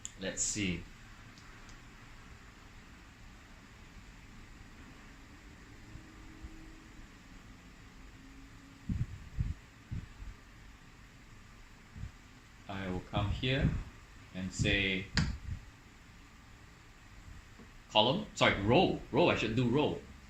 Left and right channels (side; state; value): both; identical; correlation 1.00